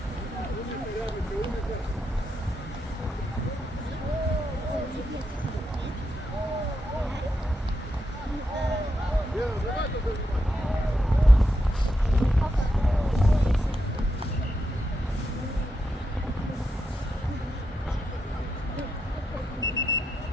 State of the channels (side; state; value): both; normal; correlation 0.84